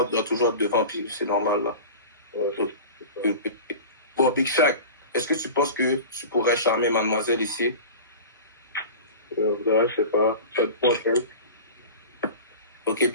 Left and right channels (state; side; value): inverted; both; correlation -0.34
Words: doit toujours être devant, puis c'est normal là. Ouais, Bon, Big Shaq, est-ce que tu penses que tu pourrais charmer mademoiselle ici? je sais pas, ça te prend, hein. Ok,